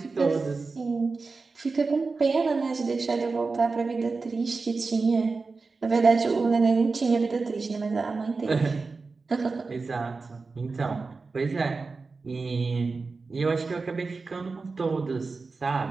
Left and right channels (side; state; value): left; quieter; 4.1 dB